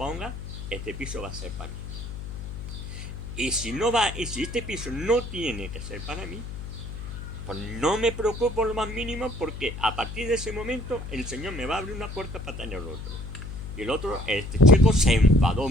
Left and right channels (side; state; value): left; noise; hum, 9 dB below the sound